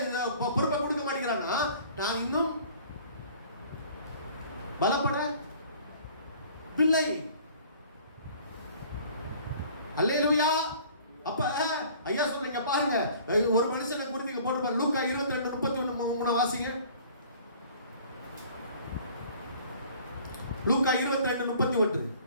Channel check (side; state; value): both; inverted; correlation -0.51